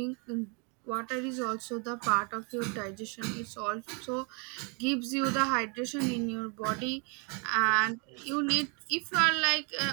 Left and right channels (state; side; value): quieter; left; 34.2 dB